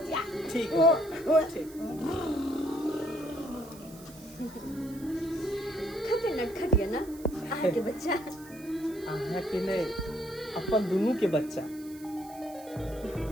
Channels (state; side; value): noise; right; hiss, 20 dB below the sound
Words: ठीक खटे नटखटिया ना आहा के बच्चा, अहाँ के नहीं, अपन दोनों के बच्चा।